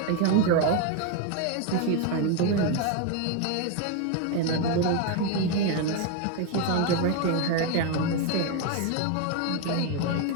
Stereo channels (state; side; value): different; both; correlation 0.02